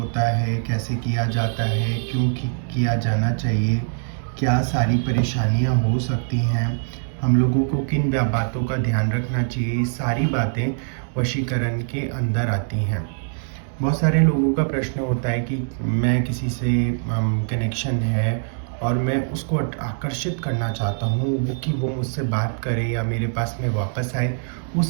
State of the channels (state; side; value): silent; left; digital silence